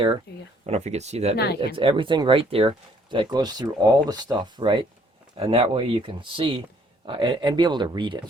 There you go. I don't know if you can see that. No, I It's can. everything right there that goes through all the stuff, right? And that way you can see and be able to read it.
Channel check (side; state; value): both; normal; correlation 0.63